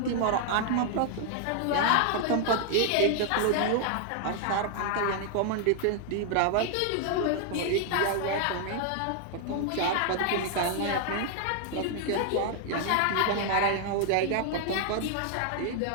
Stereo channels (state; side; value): different; both; correlation 0.00